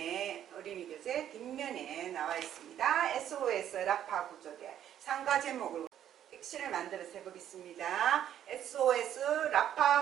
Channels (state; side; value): quieter; left; 10.6 dB